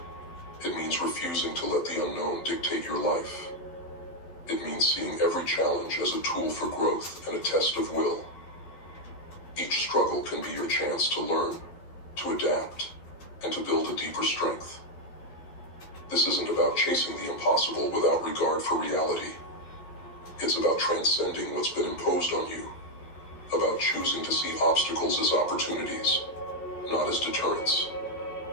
It means refusing to let the unknown dictate your life. It means seeing every challenge as a tool for growth and a test of will. Each struggle can be your chance to learn, to adapt, and to build a deeper strength. This isn't about chasing the impossible without regard for reality. It's about transcending what's been imposed on you, about choosing to see obstacles as opportunities, not as deterrents.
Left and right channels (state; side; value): late; right; 12 ms